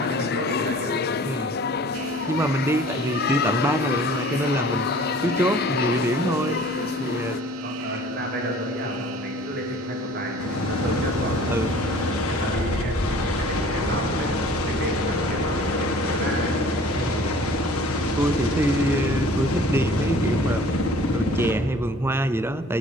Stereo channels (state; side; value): normal; both; correlation 0.48